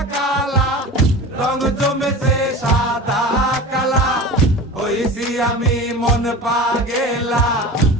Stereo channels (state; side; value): normal; both; correlation 0.34